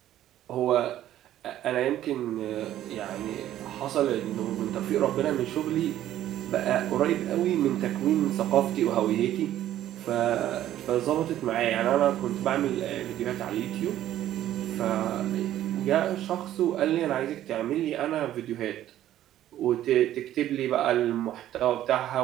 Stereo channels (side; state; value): left; quieter; 12.6 dB